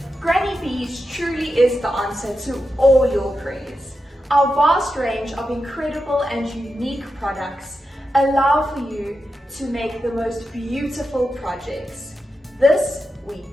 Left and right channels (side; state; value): both; normal; correlation 0.88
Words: Granny Bees truly is the answer to all your prayers. Our vast range of incredible and unique products allow for you to make the most beautiful projects. This we